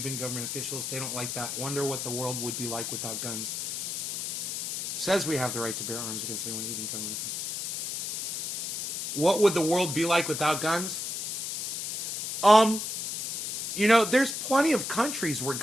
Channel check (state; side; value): noise; left; hiss, 4 dB below the sound